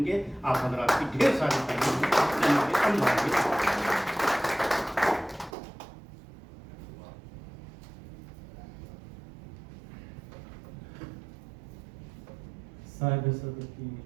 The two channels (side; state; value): left; drops out; at 5.6 s